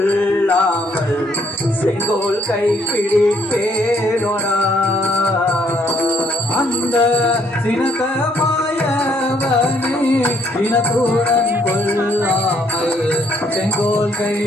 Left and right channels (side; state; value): both; normal; correlation 0.68